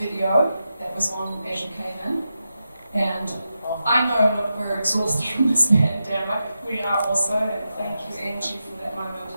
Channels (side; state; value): both; inverted; correlation -0.89